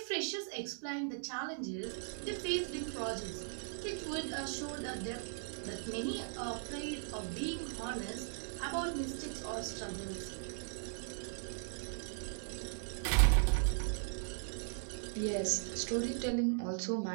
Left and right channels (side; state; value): left; silent; 52 dB below the other